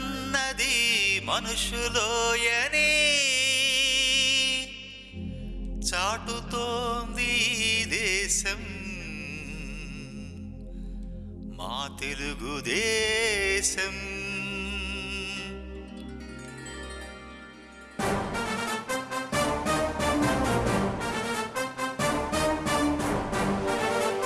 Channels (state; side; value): identical; both; correlation 1.00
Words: మనుషులోయనే చాటుతోంది దేశం మా తెలుగుదేశం.